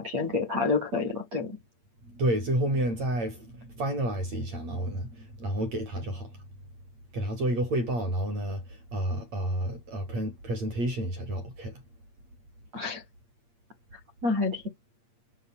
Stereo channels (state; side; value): late; left; 8.6 ms